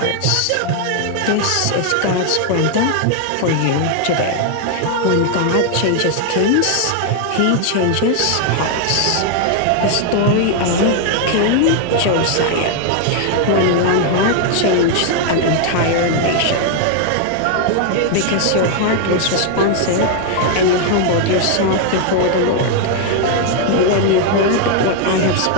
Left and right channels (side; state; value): both; different; correlation 0.00